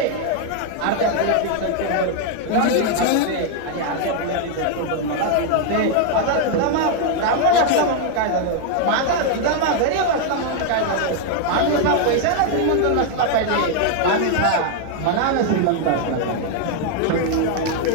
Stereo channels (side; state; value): both; different; correlation 0.00